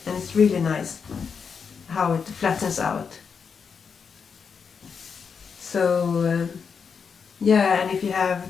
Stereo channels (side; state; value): right; quieter; 6.1 dB